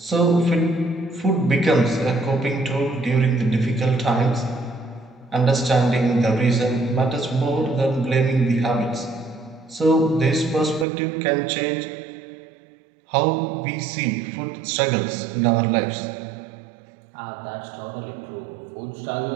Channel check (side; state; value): left; drops out; at 10.9 s